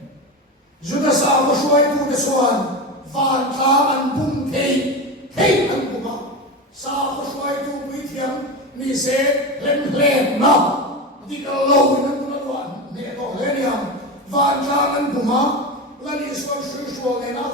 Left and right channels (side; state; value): both; normal; correlation 0.22